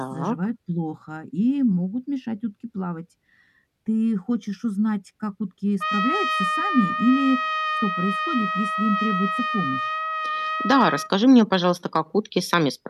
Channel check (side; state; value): both; identical; correlation 1.00